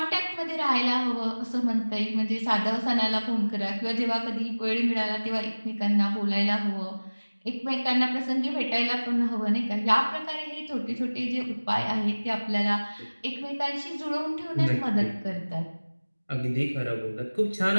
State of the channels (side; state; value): both; inverted; correlation -1.00